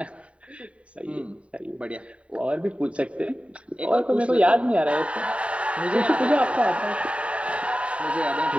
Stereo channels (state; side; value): late; left; 0.063 ms